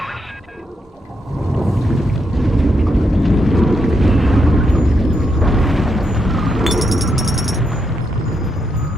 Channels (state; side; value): normal; both; correlation 0.81